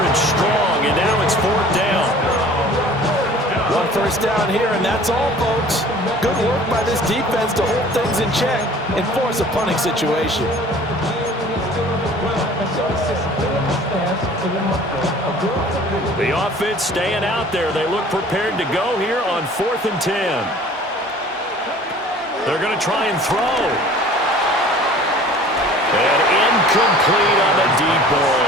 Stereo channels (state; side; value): normal; both; correlation 0.48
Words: strong, and now it's 4th down. 1 first down here, and that's all, folks. Good work by this defense to hold things in check and force a punting situation. The offense staying out there. They look prepared to go here on 4th and 10. They're going to try and throw. And incomplete on the deep